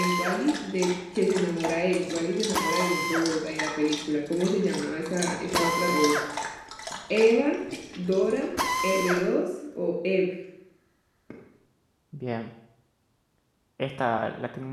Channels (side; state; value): both; identical; correlation 1.00